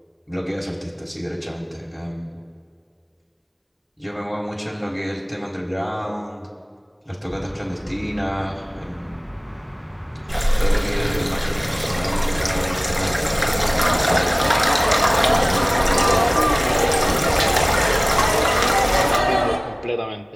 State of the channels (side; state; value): both; identical; correlation 1.00